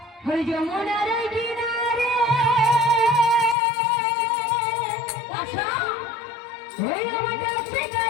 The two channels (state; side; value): drops out; right; at 3.6 s